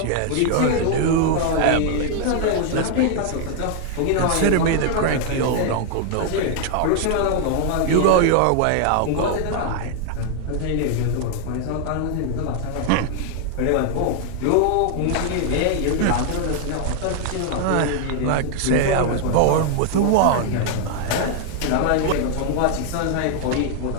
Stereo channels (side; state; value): both; different; correlation 0.00